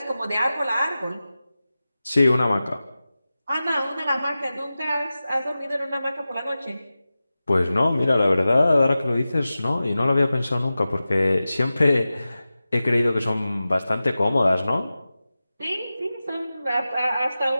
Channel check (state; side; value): inverted; both; correlation -0.95